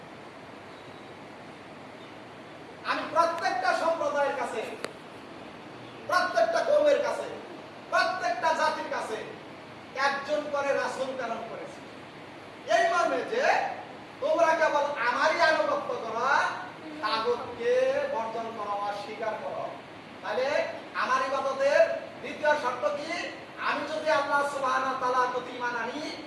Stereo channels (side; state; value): both; identical; correlation 1.00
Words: আমি প্রত্যেকটা সম্প্রদায়ের কাছে, প্রত্যেকটা কওমের কাছে, প্রত্যেকটা জাতির কাছে একজন করে রাসূল প্রেরণ করেছি, এই মর্মে যে তোমরা কেবল আমারই আনুগত্য করো, তাগুতকে বর্জন করো, অস্বীকার করো। তাহলে আমার ইবাদতের দ্বিতীয় শর্ত কি? আমি যদি আল্লাহ সুবহানাহু ওয়া তাআলার প্রতি ঈমান আনি,